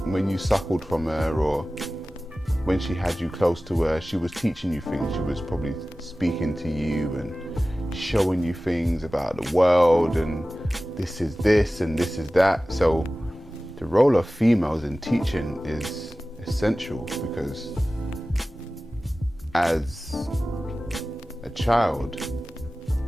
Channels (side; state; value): both; normal; correlation 0.96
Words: when you suckled from her or when she had you close to her, she was teaching you things. She was probably speaking to you and showing you things about the world and this is this and this is that. So the role of females in teaching is essential because as a child,